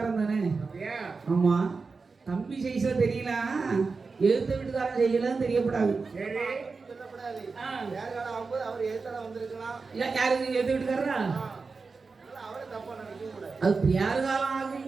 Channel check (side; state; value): left; quieter; 4.4 dB